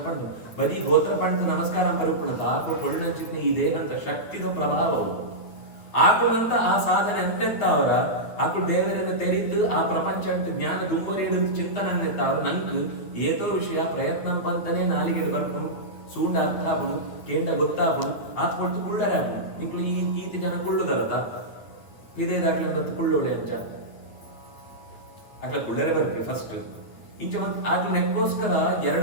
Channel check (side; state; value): right; late; 9.0 ms